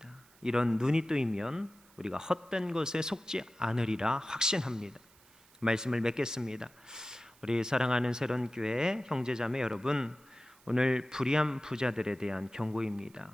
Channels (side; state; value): right; noise; hiss, 28 dB below the sound